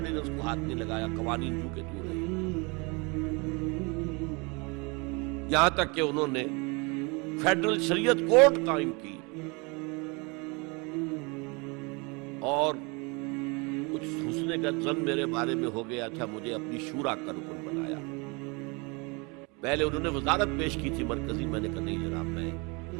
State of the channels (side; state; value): left; quieter; 29.3 dB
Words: کو ہاتھ نہیں لگایا، قوانین جو کہ تو رہے، یہاں تک کہ انہوں نے فیڈرل شریعت کورٹ قائم کی، اور کچھ حسن کا ظن میرے بارے میں ہو گیا تھا، مجھے اپنی شورا کا رکن بنایا۔ پہلے انہوں نے وزارت پیش کی تھی مرکزی، میں نے کہا نہیں جناب، میں